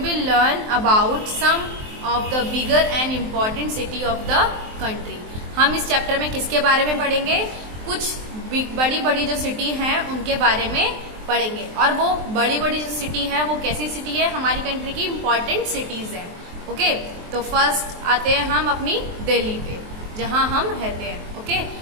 learn about some of the bigger and important city of the country. हम इस चैप्टर में किसके बारे में पढ़ेंगे? कुछ बड़ी बड़ी जो सिटी हैं उनके बारे में पढ़ेंगे। और वो बड़ी बड़ी जो सिटी है वो कैसी सिटी है? हमारी कंट्री की इम्पॉर्टेंट सिटीज है। ओके, तो फर्स्ट आते हैं हम अपनी दिल्ली पे, जहां हम रहते हैं। ओके,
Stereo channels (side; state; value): left; late; 23 ms